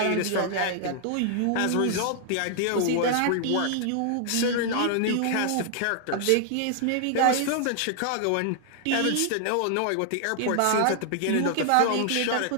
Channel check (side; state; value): both; different; correlation 0.00